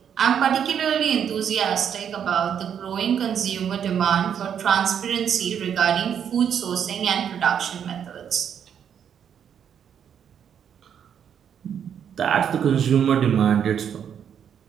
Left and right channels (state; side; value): quieter; left; 8.4 dB